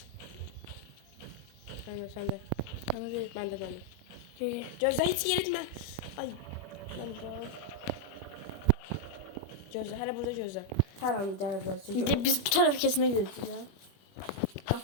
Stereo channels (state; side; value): late; right; 21 ms